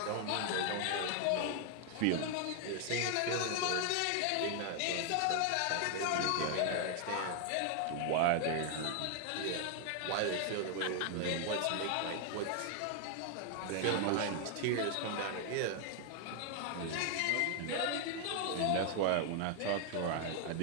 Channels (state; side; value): different; both; correlation 0.00